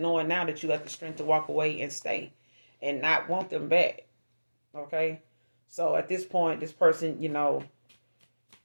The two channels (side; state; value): both; inverted; correlation -1.00